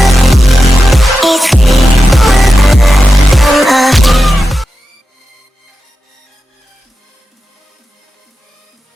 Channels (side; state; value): both; normal; correlation 0.91